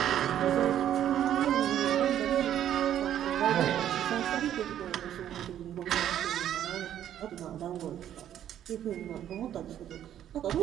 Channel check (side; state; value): left; quieter; 10.9 dB